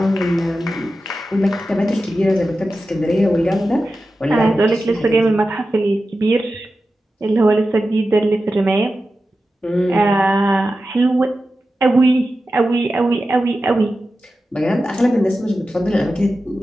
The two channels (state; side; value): normal; both; correlation 0.92